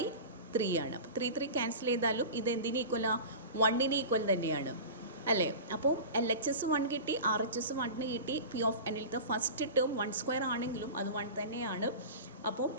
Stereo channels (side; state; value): both; inverted; correlation -0.32